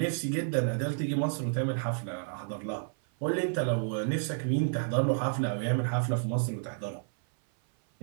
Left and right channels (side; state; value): left; silent; 56 dB below the other